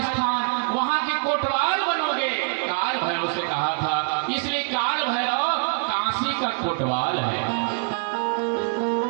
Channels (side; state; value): left; silent; 58 dB below the other